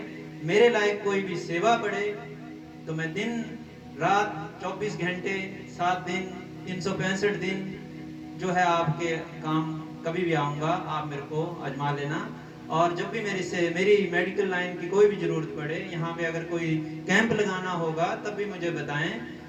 मेरे लायक कोई भी सेवा पड़े, तो मैं दिन रात 24 घंटे 7 दिन 365 दिन जो है आपके काम कभी भी आऊँगा, आप मेरे को आजमा लेना। और जब भी मेरी मेडिकल लाइन की कोई भी जरूरत पड़े, यहाँ पे अगर कोई कैंप लगाना होगा तब भी मुझे बताएं।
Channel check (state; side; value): identical; both; correlation 1.00